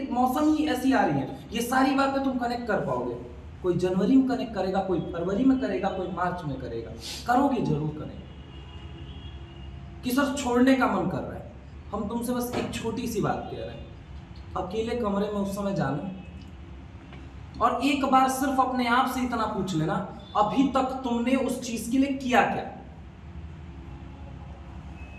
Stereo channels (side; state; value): both; identical; correlation 1.00